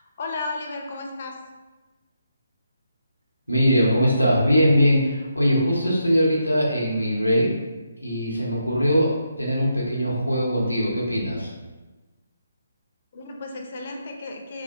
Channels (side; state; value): both; inverted; correlation -0.81